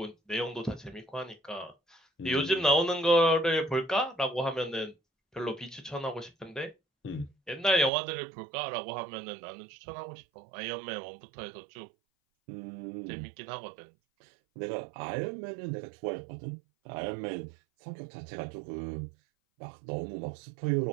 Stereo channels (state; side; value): drops out; left; at 7.9 s